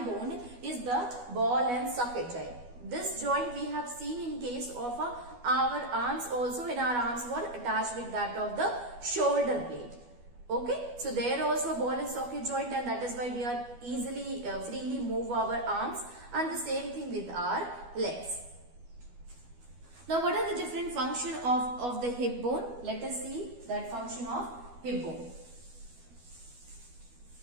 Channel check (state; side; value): late; left; 12 ms